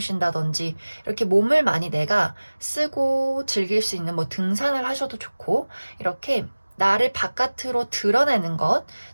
이렇게 몸을 많이 내가 쓰고 즐길 수 있는 뭐 등산을 하셔도 좋고, 이렇게 나를 바깥으로 드러내는 것,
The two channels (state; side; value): inverted; both; correlation -1.00